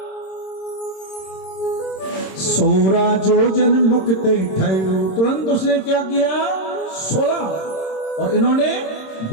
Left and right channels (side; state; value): right; late; 26 ms